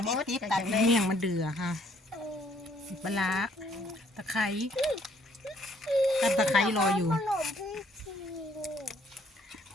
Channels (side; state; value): both; normal; correlation 0.65